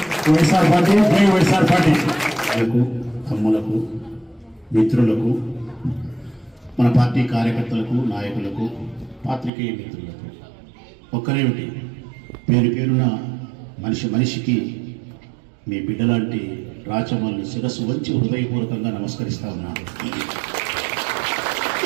వైఎస్ఆర్ పార్టీ జై వైఎస్ఆర్ పార్టీ. అమ్ములకు మిత్రులకు మన పార్టీ కార్యకర్తలకు నాయకులకు పాత్రికేయ మిత్రులకు ఒక్కరేమిటి పేరు పేరున మనిషికి మీ బిడ్డలాంటి రాచమల్ని శిరస్సు వంచి హృదయపూర్వకంగా నమస్కరిస్తా ఉన్నాను.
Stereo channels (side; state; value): left; drops out; at 9.5 s